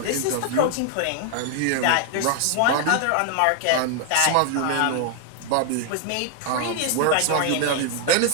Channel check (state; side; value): different; both; correlation 0.00